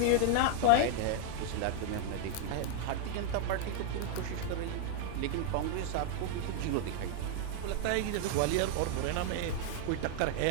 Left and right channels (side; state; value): both; different; correlation 0.00